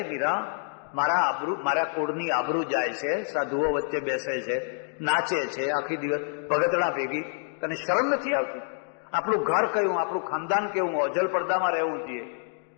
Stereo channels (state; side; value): silent; right; 59 dB below the other